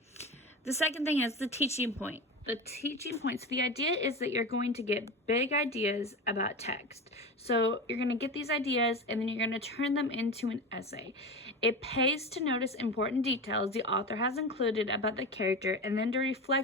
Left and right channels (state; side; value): normal; both; correlation 0.26